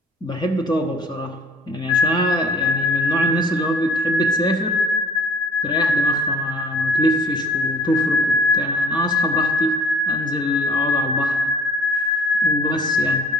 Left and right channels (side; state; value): both; normal; correlation 0.53